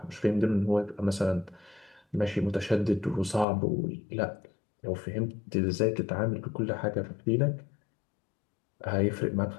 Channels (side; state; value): right; drops out; at 3.5 s